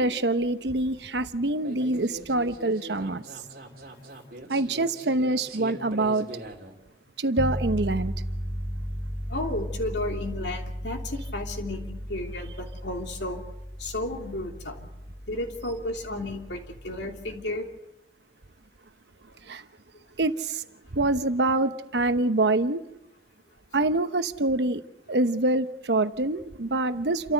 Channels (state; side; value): normal; both; correlation 0.16